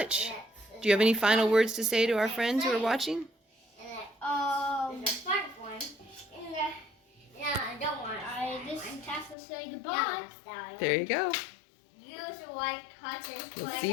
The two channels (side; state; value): right; drops out; at 9.3 s